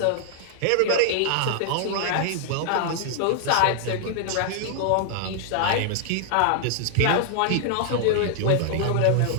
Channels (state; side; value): different; both; correlation 0.00